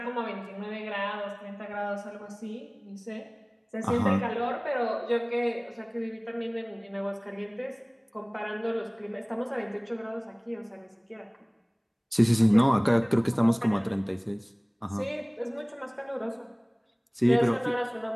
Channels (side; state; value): both; identical; correlation 1.00